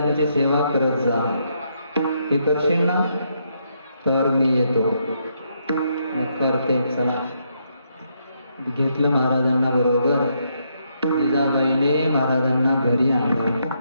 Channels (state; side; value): inverted; both; correlation -0.76